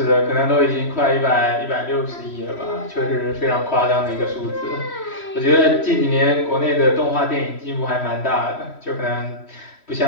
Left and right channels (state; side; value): late; right; 3.1 ms